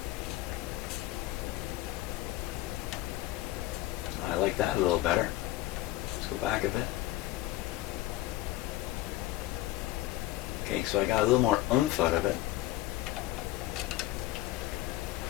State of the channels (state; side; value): quieter; right; 16.3 dB